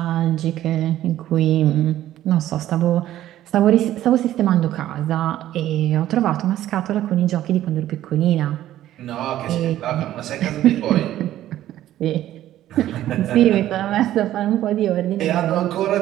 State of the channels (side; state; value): left; quieter; 13.1 dB